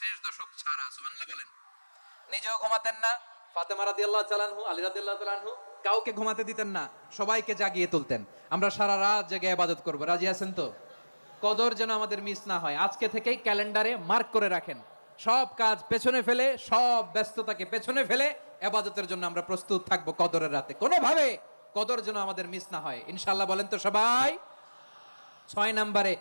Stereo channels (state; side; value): inverted; both; correlation -1.00